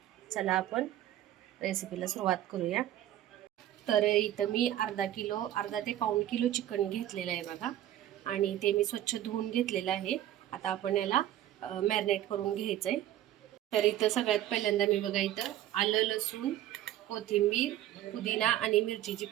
चला आपण रेसिपीला सुरुवात करूया. तर इथं मी अर्धा ते पाऊण किलो चिकन घेतलेलं आहे बघा, आणि ते मी स्वच्छ धुवून घेतलेलं आहे. आता आपण याला मॅरिनेट करून घ्यायचं आहे. तर इथं सगळ्यात पहिल्यांदा मी बघा इथं आलं, लसूण, कोथिंबीर, पुदिना आणि मिरचीची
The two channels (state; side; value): quieter; left; 12.7 dB